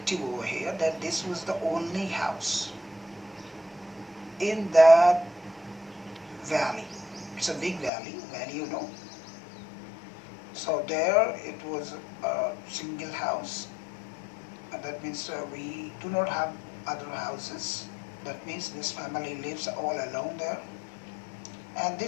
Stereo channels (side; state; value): right; drops out; at 7.9 s